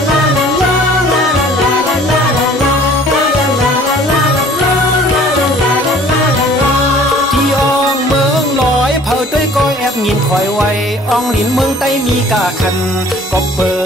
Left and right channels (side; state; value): both; normal; correlation 0.52